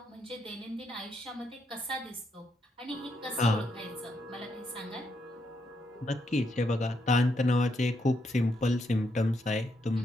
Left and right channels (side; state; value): both; normal; correlation 0.78